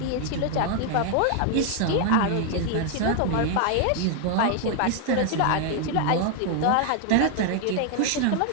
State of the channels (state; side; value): different; both; correlation 0.01